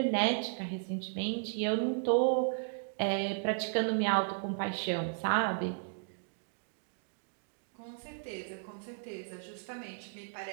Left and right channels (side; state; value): left; silent; digital silence